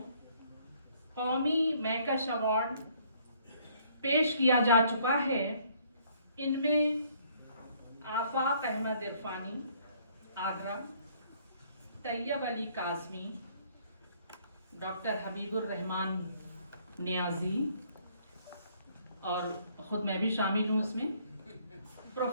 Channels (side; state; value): both; inverted; correlation -0.63